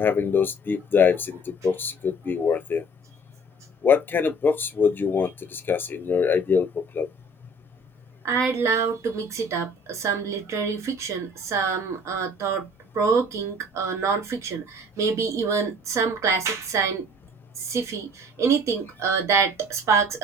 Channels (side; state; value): both; normal; correlation 0.51